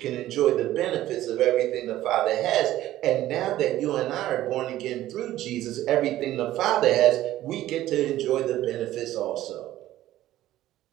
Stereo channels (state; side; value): quieter; left; 14.3 dB